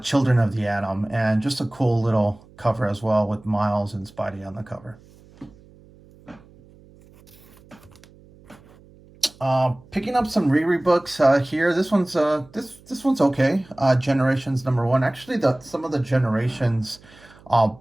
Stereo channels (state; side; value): noise; right; hum, 26 dB below the sound